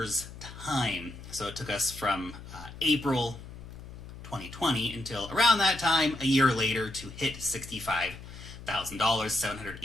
time. So it took us from April 2020 until around that time, a year later, to hit $65,000,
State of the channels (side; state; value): left; noise; hum, 14 dB below the sound